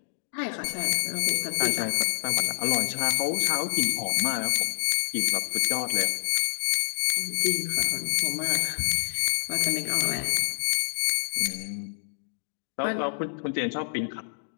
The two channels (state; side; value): silent; right; digital silence